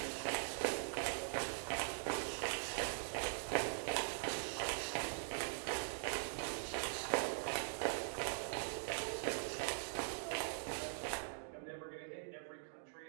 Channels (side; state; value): left; silent; digital silence